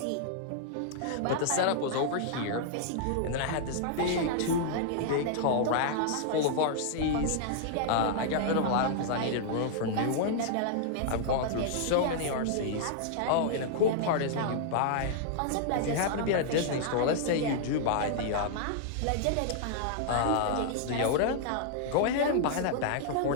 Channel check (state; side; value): different; both; correlation -0.01